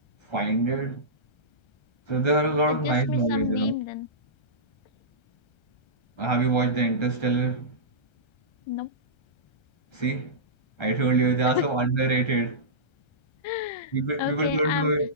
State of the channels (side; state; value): right; late; 1.3 ms